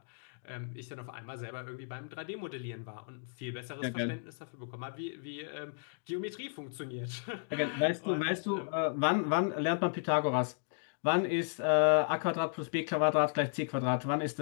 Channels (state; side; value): silent; right; digital silence